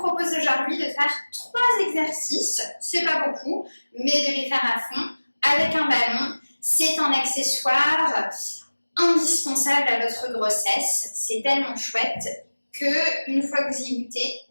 aujourd'hui de faire 3 exercices, c'est pas beaucoup, mais de les faire à fond avec un ballon. C'est un accessoire indispensable à votre grossesse, c'est tellement chouette que une fois que vous y goûtez,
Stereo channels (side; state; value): both; inverted; correlation -1.00